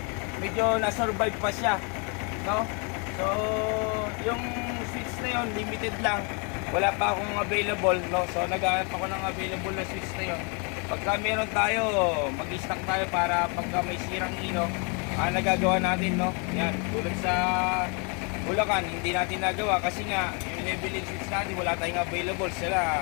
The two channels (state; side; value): quieter; right; 35.1 dB